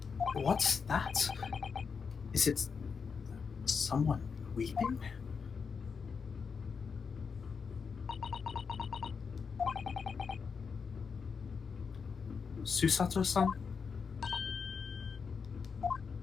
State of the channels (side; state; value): right; quieter; 5.7 dB